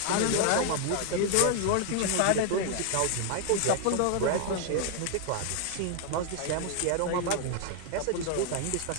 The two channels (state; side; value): different; both; correlation 0.00